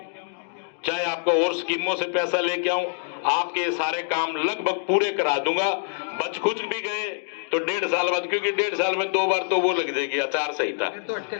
चाहे आपको और स्कीमों से पैसा लेके आऊं, आपके ये सारे काम लगभग पूरे करा दूंगा। बच कुछ भी गए तो 1.5 साल बाद, क्योंकि 1.5 साल में 2 बार तो वो लग जाएगी आचार संहिता,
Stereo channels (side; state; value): right; silent; digital silence